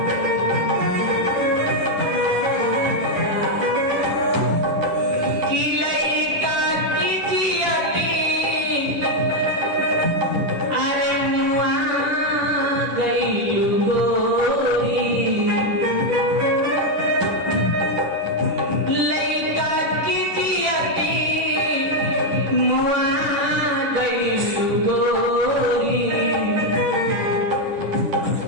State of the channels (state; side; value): late; left; 10 ms